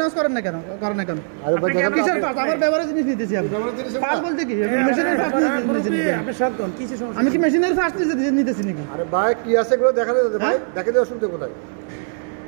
করেন না কেন? করেন না কেন? কিসের পার্টস? আমার ব্যবহারের জিনিস নিতেছি আমি। পার্টস বলতে কি? মেশিনের পার্টস নিতেছি। আমি কি মেশিনের পার্টস নিতেছি নাকি? আরে ভাই, কি আছে এগুলো দেখালে ভাই, দেখে দিয়ে অসুবিধা কোথায়?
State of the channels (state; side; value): silent; left; 65 dB below the other